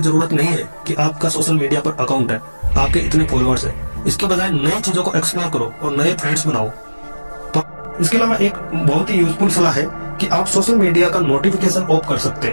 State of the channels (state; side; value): inverted; both; correlation -1.00